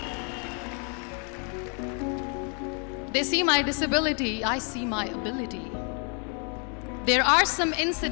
They see my disability, I see my ability. There are some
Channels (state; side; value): quieter; right; 39.3 dB